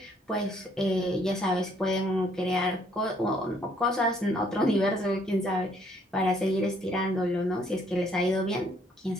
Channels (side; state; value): both; normal; correlation 0.65